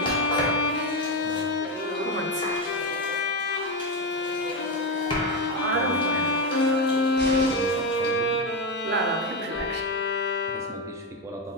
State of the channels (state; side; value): normal; both; correlation 0.11